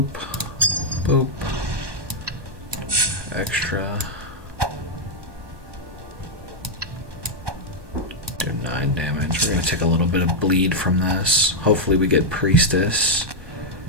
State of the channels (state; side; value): late; left; 1.2 ms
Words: boop, extra. Do 9 damage. We're going to take a little bit of bleed from this. Hopefully we get Priestess.